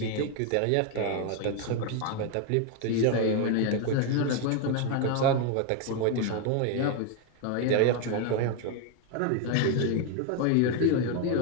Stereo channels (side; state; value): both; different; correlation 0.01